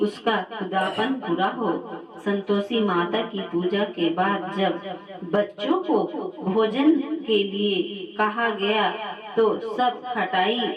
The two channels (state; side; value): identical; both; correlation 1.00